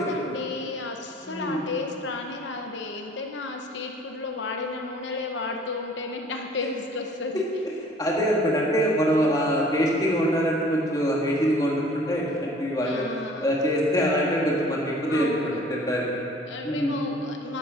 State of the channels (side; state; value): both; normal; correlation 0.52